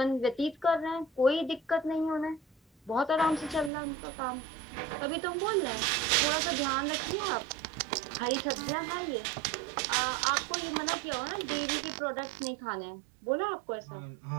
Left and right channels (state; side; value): drops out; left; at 3.7 s